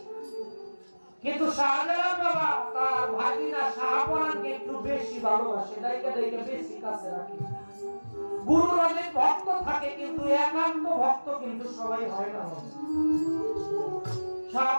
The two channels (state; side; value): inverted; both; correlation -1.00